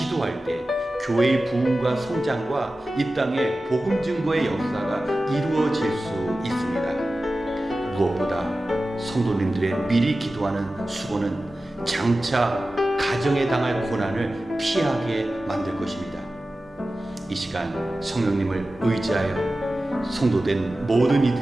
때 교회의 부흥과 성장과 이 땅의 복음 증거의 역사가 이루어질 수 있습니다. 무엇보다 성도님들의 미리 기도하는 수고는 장차 가정에 당할 고난을 피하게 만들 것입니다. 이 시간 성령님을 의지하여 성도된 모든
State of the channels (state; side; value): normal; both; correlation 0.95